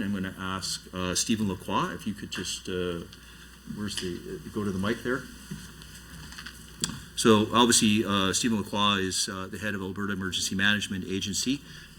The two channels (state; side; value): identical; both; correlation 1.00